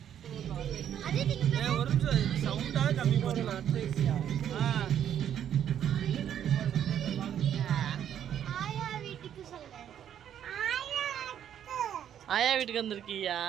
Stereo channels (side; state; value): left; quieter; 9.8 dB